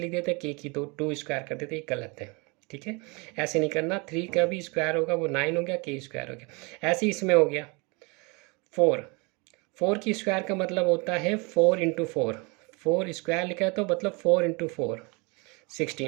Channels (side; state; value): left; quieter; 29.2 dB